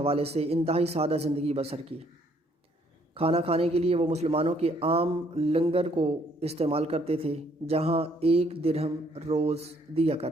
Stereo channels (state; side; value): normal; both; correlation 0.66